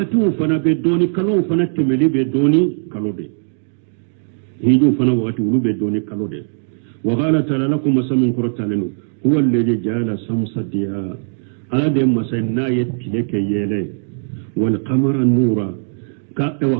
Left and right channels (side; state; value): left; silent; digital silence